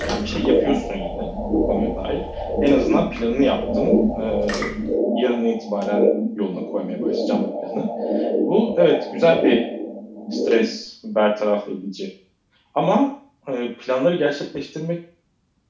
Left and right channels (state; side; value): identical; both; correlation 1.00